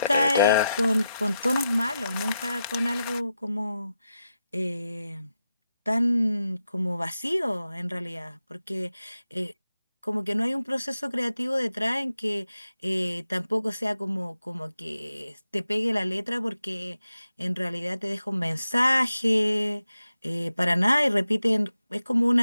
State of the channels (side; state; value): both; inverted; correlation -0.88